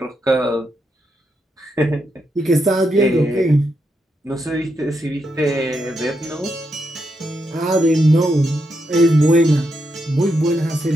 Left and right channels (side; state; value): both; normal; correlation 0.82